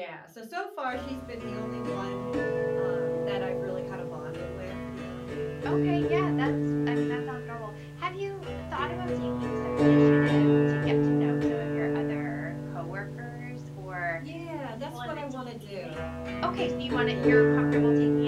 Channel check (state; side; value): identical; both; correlation 1.00